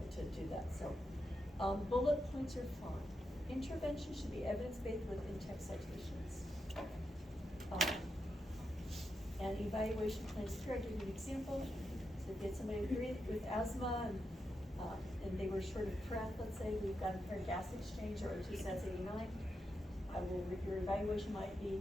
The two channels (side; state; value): both; normal; correlation 0.86